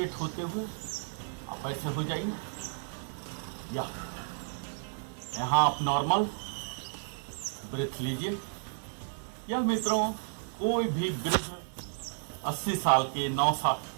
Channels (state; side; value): silent; left; digital silence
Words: होते हुए आप ऐसे हो जाइए, या यहाँ आप नॉर्मल ब्रेथ लीजिए। या मित्रों, कोई भी वृद्ध 80 साल के,